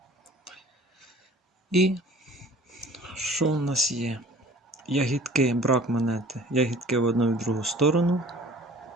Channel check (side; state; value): both; normal; correlation 0.48